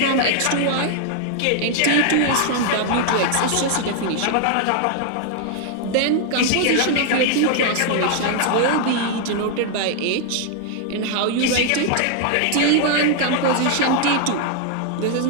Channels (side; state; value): both; different; correlation 0.00